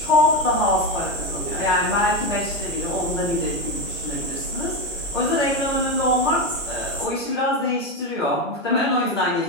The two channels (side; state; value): both; normal; correlation 0.14